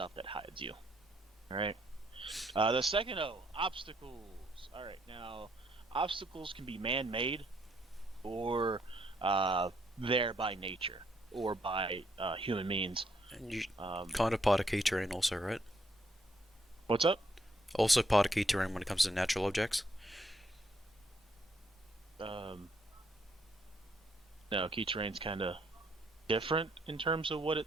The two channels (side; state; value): both; normal; correlation 0.72